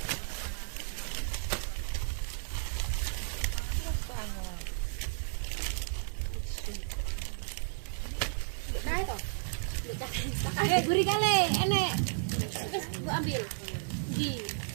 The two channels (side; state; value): left; silent; digital silence